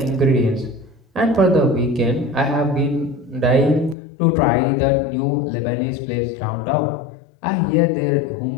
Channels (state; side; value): drops out; right; at 4.0 s